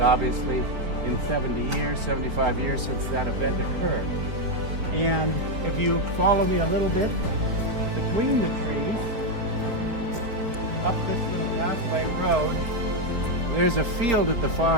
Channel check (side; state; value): left; late; 4.4 ms